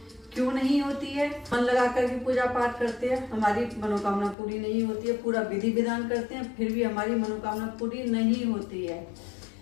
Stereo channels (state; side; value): drops out; right; at 4.4 s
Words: क्यों नहीं होती है? मन लगा कर के पूजा पाठ करते हैं, हमारी मनोकामना पूरी नहीं होती है। पूरा विधि विधान करते हैं, फिर भी हमारी मनोकामना पूरी नहीं होती है।